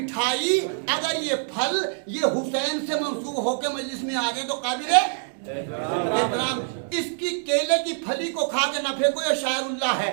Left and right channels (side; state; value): left; silent; 62 dB below the other